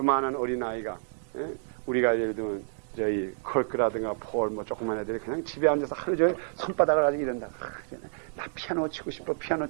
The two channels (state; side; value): silent; left; digital silence